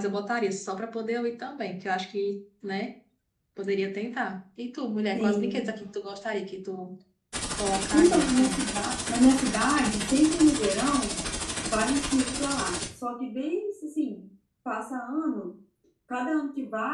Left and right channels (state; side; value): identical; both; correlation 1.00